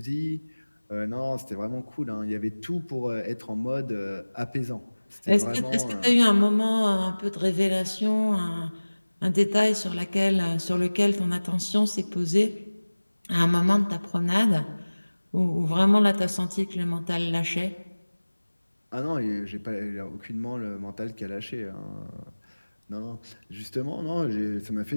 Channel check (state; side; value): inverted; both; correlation -1.00